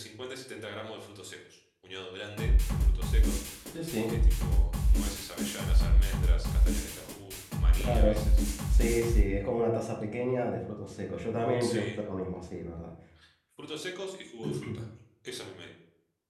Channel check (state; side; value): identical; both; correlation 1.00